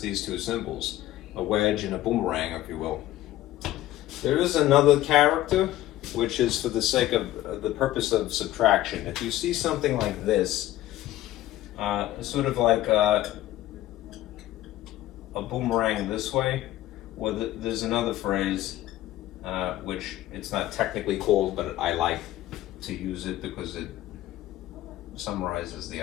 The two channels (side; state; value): right; quieter; 14.6 dB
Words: these 2 symbols, a wedge and a boomerang, if you will. There is another character, which is for the sake of the purpose of subtraction. If you see something like this, sort of like a boomerang this way, well, there's another phrase, which it's not technically called, but I like to use it because it summarizes the